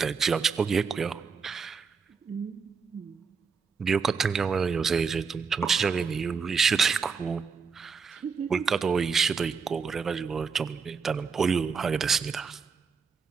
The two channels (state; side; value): quieter; left; 5.7 dB